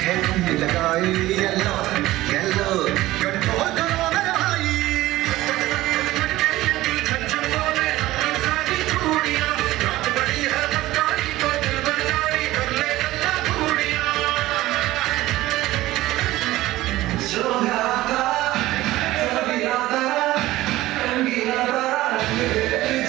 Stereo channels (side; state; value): left; quieter; 16.8 dB